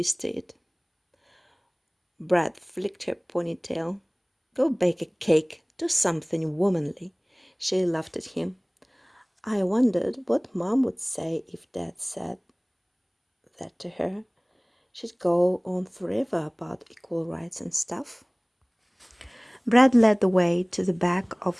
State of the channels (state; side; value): identical; both; correlation 1.00